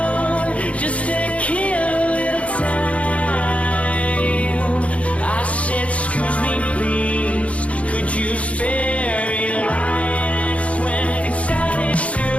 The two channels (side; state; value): right; late; 0.064 ms